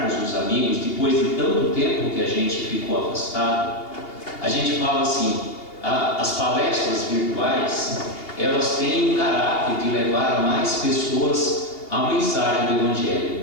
os amigos depois de tanto tempo que a gente ficou afastado. A gente fala assim: as palestras virtuais, elas têm um caráter de levar a mais pessoas a mensagem do Evangelho,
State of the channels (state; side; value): late; right; 2.8 ms